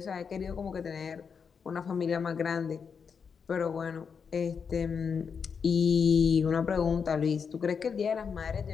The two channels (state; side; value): quieter; right; 6.2 dB